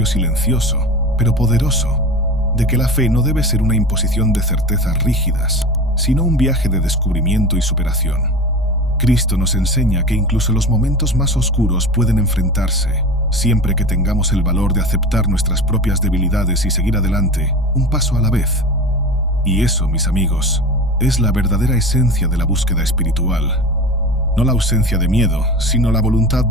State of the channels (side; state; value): both; normal; correlation 0.32